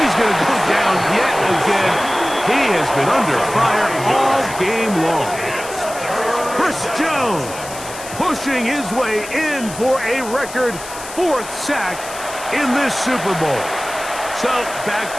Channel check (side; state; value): left; noise; hiss, 13 dB below the sound